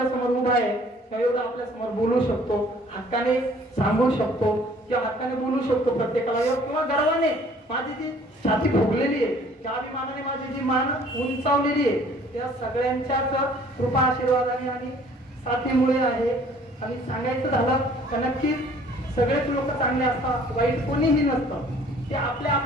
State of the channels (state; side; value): normal; both; correlation 0.55